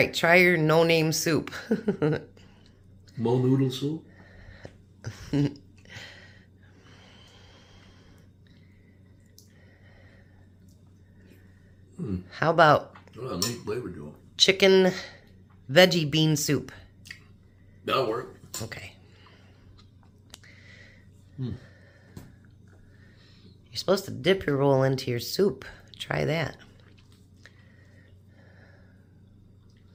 try your no-name soup. Mo noodle soup. How about Oh, nice flavor to it. chicken veggie bean soup? That'll work. Okay. You're supposed to dip your roll into your soup. Try that.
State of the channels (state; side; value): identical; both; correlation 1.00